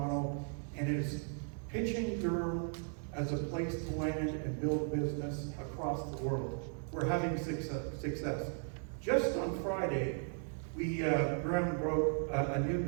and is pitching Durham as a place to land and build business across the world. We're having success. Just on Friday, we ground broke a new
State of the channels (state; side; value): silent; left; 53 dB below the other